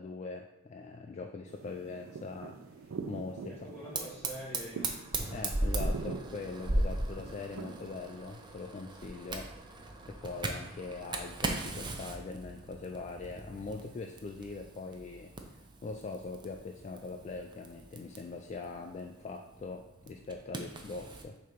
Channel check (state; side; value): normal; both; correlation 0.51